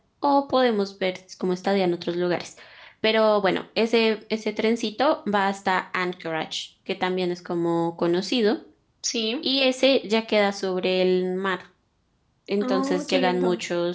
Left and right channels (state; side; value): identical; both; correlation 1.00